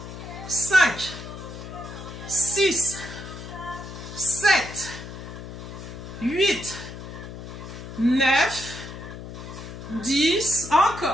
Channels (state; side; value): noise; left; hum, 11 dB below the sound